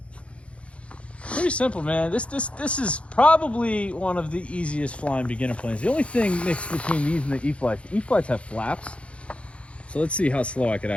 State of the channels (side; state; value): right; late; 0.061 ms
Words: Pretty simple, man. This is probably one of the easiest flying beginner planes. The only thing mixed between these and the E-Flites, the E-Flites have flaps. So let's see how slow I could